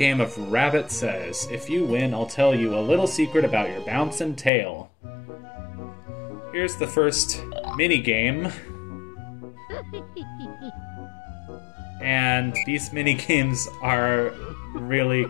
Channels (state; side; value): drops out; right; at 4.5 s